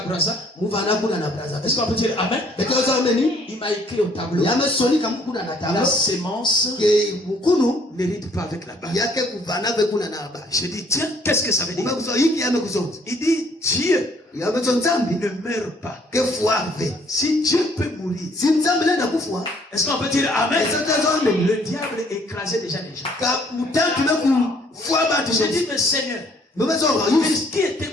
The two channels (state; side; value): normal; both; correlation 0.62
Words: Est-ce qu'on peut dire amen? Il m'a écrit au tableau: la sémence n'hérite pas avec la balle. Je dis, tiens, qu'est-ce que ça veut dire? Il dit, Dieu ne meurt pas. Si Dieu peut mourir, est-ce qu'on peut dire amen? Le diable écrasait déjà les gens. J'ai dit, mais Seigneur, qui était